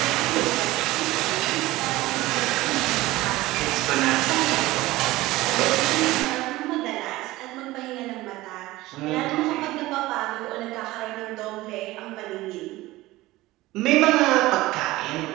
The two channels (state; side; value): quieter; left; 18.3 dB